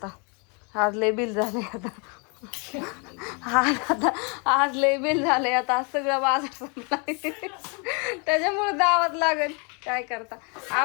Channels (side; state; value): right; quieter; 34.1 dB